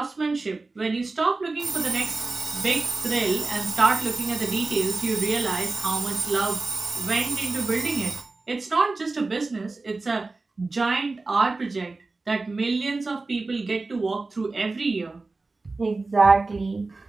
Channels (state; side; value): quieter; left; 3.6 dB